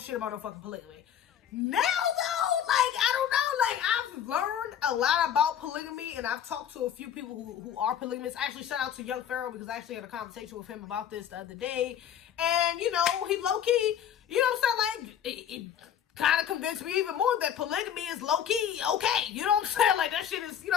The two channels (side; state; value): right; quieter; 9.3 dB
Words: about no fucking polygamy. Now, though, like, I don't know. Like, I've learned a lot about polygamy, and I've talked to a few people who are polygamists. Actually, shout out to Young Pharaoh, because I actually had a conversation with him about this the other day. And, you know, he low-key, you know what I'm saying? Like, it kind of convinced me even more that polygamy is low-key okay. You know what I'm saying? Like, that shit is, you